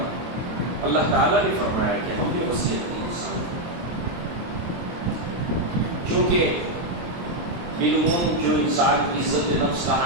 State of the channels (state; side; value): late; left; 23 ms